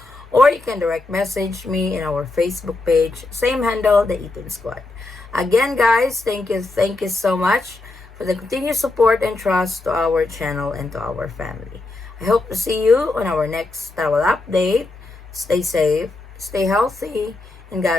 Or you can direct message me in our Facebook page, same handle, the Eaton Squad. Again guys, thank you so much for the continued support and trust to our channel and to our family. I hope to see you on our next travel update. Stay safe, stay healthy, and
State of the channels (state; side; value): quieter; right; 3.1 dB